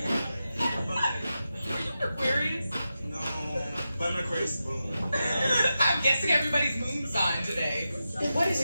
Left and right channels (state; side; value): inverted; both; correlation -0.90